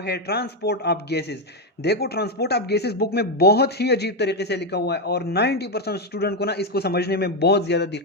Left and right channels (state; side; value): normal; both; correlation 0.06